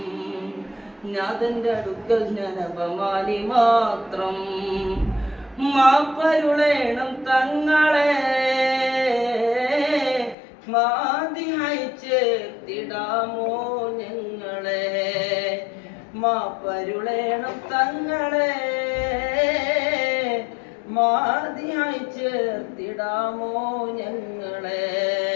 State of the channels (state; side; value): drops out; right; at 10.4 s